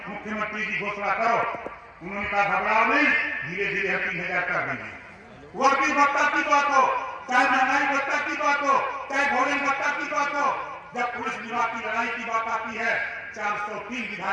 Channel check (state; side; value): identical; both; correlation 1.00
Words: मुख्यमंत्री जी घोषणा करो। उन्होंने कहा घबराओ नहीं, धीरे धीरे 3000 कर देंगे। वर्दी भत्ता की बात हो, चाहे महंगाई भत्ता की बात हो, चाहे भोजन भत्ता की बात हो, जब पुलिस विभाग की लड़ाई की बात आती है 403